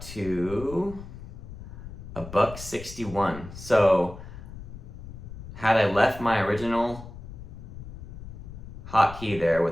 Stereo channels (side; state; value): left; noise; rumble, 12 dB below the sound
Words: to $1.61. So had I left my original hotkey there